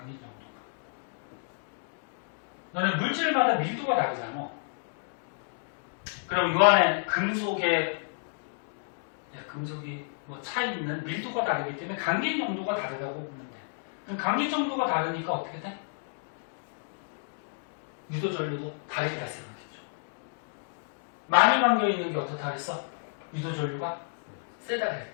정도가. 너는 물질마다 밀도가 다르잖아. 그럼 이 안에 금속이 뭐 차이 있는 밀도가 다르기 때문에 감긴 정도가 다르다고 보면 돼. 그럼 감긴 정도가 다르니까 어떻게 돼? 유도 전류도 다르게 발생하겠죠. 많이 감겨 있는 게 어떻다 그랬어? 유도 전류가 세다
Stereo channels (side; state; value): right; silent; digital silence